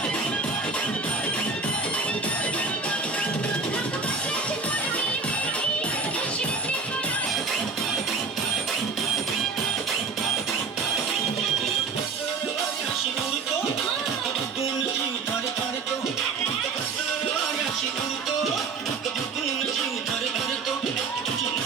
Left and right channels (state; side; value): quieter; left; 4.5 dB